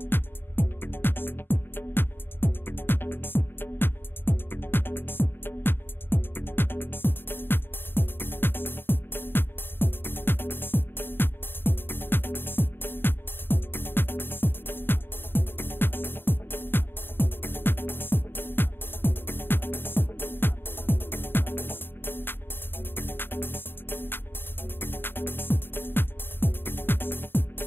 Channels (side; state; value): right; late; 0.10 ms